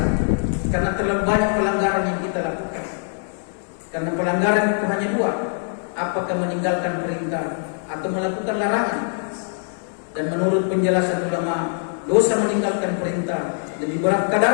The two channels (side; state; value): right; silent; digital silence